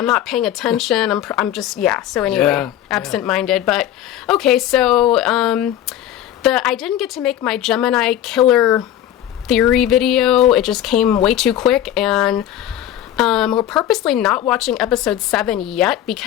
not paying attention. I'm just, so anyway, absent-minded. But, okay, so, I didn't get to make my Gemini killer theory video. It just came way too quick, and, we're purposely not watching episode 7 yet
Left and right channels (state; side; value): quieter; right; 11.6 dB